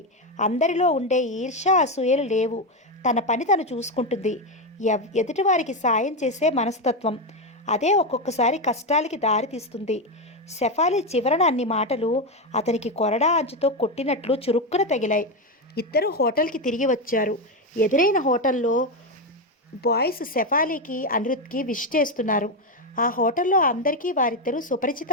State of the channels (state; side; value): normal; both; correlation 0.10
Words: అందరిలో ఉండే ఈర్ష్య అసూయలు లేవు. తన పని తను చూసుకుంటుంది. ఎదుటివారికి సాయం చేసే మనస్తత్వం. అదే ఒక్కొక్కసారి కష్టాలకి దారితీస్తుంది. శెఫాలి చివరన అన్ని మాటలు అతనికి కొరడా అంచుతో కొట్టినట్లు చురుక్కున తగిలాయి. ఇద్దరు హోటల్కి తిరిగి వచ్చారు. ఎదురైన హోటల్లో బాయ్స్ శెఫాలీకి అనిరుద్కి విష్ చేస్తున్నారు. ఆ హోటల్లో అందరికీ వారిద్దరూ